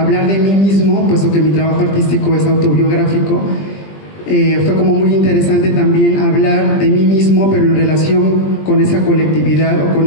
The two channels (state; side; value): late; right; 20 ms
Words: de mí mismo, puesto que mi trabajo artístico es autobiográfico. Fue como muy interesante también hablar de mí mismo, pero en relación con esa colectividad o